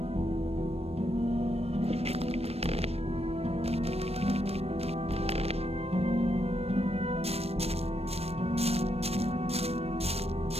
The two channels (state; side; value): late; left; 0.29 ms